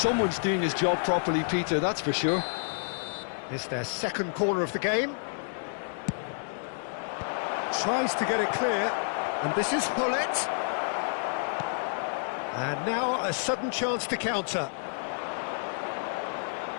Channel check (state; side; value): silent; right; digital silence